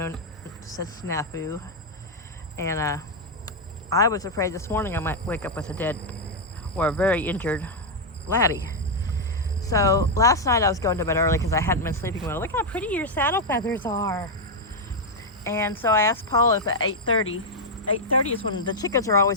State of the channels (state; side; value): normal; both; correlation -0.01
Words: said snafu, and I was afraid this morning I might wake up with a dead or a very injured Laddie. So last night I was going to bed early because I hadn't been sleeping well. Look how pretty your saddle feathers are. And so I asked Paul if at 8:30 is when the chickens are